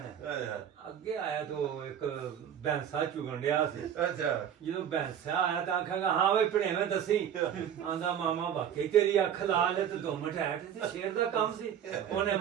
ਅੱਗੇ ਆਇਆ ਤਾਂ ਇੱਕ ਭੈਂਸਾ ਚੁਗਣ ਡਿਆ ਸੀ। ਅੱਛਾ। ਜਦੋਂ ਭੈਂਸਾ ਆਇਆ ਤਾਂ ਆਖਾਂਗਾ ਹਾਂ ਵੇ ਭਣੇਵੇਂ ਦੱਸੀ। ਆਂਦਾ ਮਾਮਾ ਵਾਕਈ ਤੇਰੀ ਅੱਖ ਲਾਲ ਹੈ ਤੇ ਦੁਮ ਟਾਈਟ ਤੇ ਸ਼ੇਰ ਦਾ ਕੰਮ ਸੀ। ਉਹਨੇ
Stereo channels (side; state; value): left; quieter; 9.2 dB